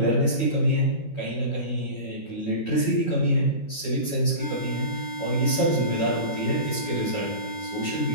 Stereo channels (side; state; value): right; late; 12 ms